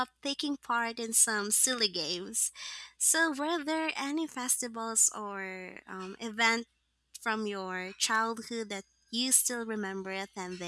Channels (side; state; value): both; identical; correlation 1.00